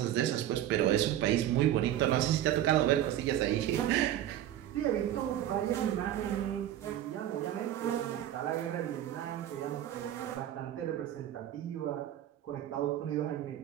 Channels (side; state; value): left; quieter; 12.0 dB